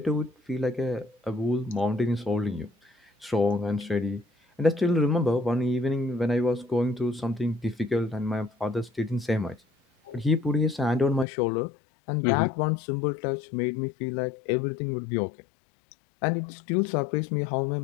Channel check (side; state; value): right; drops out; at 11.2 s